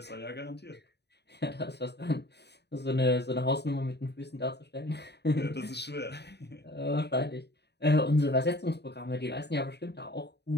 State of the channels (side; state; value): right; late; 0.49 ms